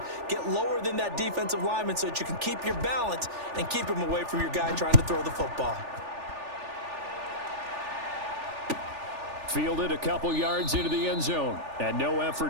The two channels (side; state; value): left; late; 3.4 ms